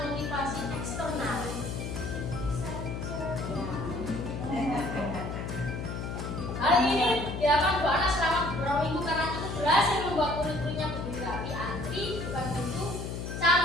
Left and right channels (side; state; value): left; noise; hum, 5 dB below the sound